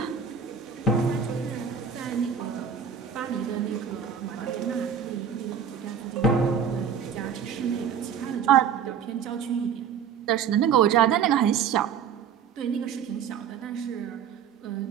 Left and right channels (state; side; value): quieter; left; 7.4 dB